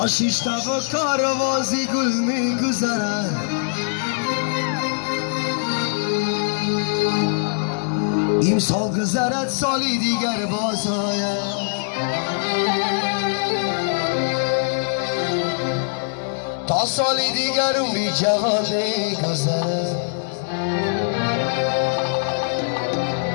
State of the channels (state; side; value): silent; right; digital silence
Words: شش تا و کاروازی گل میگذرد امسال گذرد سالی دیگر باز آید تا سالی دیگر عمری جوان میگذرد